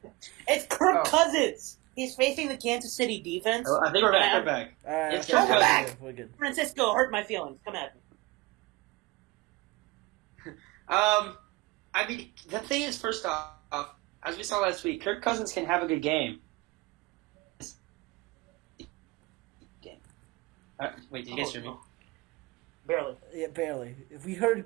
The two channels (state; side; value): quieter; left; 22.3 dB